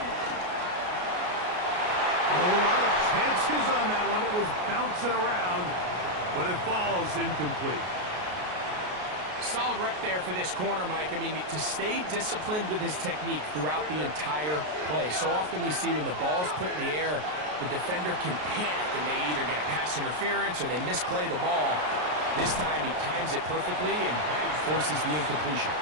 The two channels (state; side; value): late; left; 33 ms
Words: A lot of chances on that one. It was bouncing around, but it falls incomplete. Solid rep there for this corner, Mike. I mean, to stay disciplined with his technique throughout the entire play. So often we see when the ball's put in the air, the defender can panic and they either get a pass interference or they misplay the ball. This time he times it perfectly and forces the incompletion.